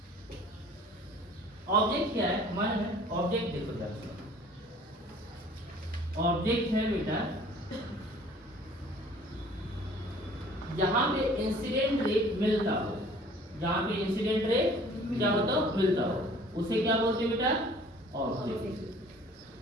ऑब्जेक्ट क्या है? मान है ऑब्जेक्ट, देखो जरा, ऑब्जेक्ट है बेटा जहां पे इंसिडेंट रे मिलता हो, जहां पे इंसिडेंट रे क्या होता हो? मिलता हो, उसे क्या बोलते हैं बेटा? ऑब्जेक्ट।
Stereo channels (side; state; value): both; normal; correlation 0.51